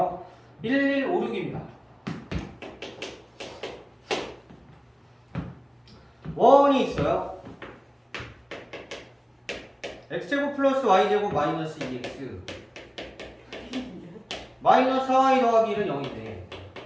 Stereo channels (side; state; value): both; identical; correlation 1.00